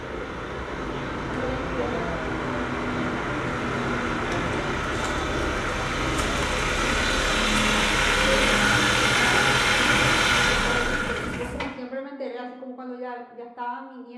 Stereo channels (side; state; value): both; identical; correlation 1.00